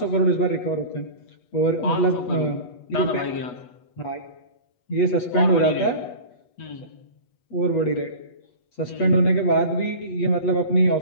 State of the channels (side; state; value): right; late; 8.2 ms